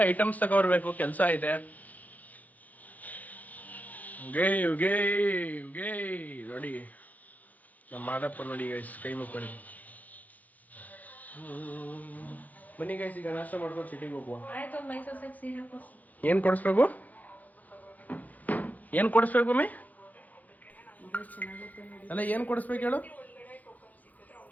ಐಟಮ್ಸ್ ತಗೊಬರ್ಬೇಕು, ಕೆಲಸ ಇದೆ. ನೋಡಿ ನಮ್ಮ ಮಾದಪ್ಪ ನೋಡಿ ಗೈಸ್, ಕೈ ಮುಕ್ಕೊಳ್ಳಿ. ಬನ್ನಿ ಗೈಸ್, ಈಗ ನಾಷ್ಟ ಮಾಡ್ಕೊಂಡು ಸಿಟಿಗೆ ಹೋಗುವ. ಏನು ಕೊಡಿಸ್ಬೇಕು ಮಮ್ಮಿ? ಅಲ್ಲ, ಏನು ಕೊಡಿಸ್ಬೇಕು ಹೇಳು?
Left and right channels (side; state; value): right; late; 0.079 ms